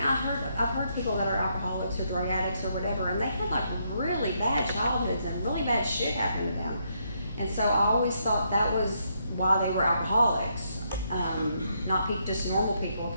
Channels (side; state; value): both; inverted; correlation -0.76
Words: heard people that are alcoholics or drug addicts or whatever, and they had like really bad childhoods and really bad shit happen to them. And so I always thought that was why they were alcoholics. Not just normal people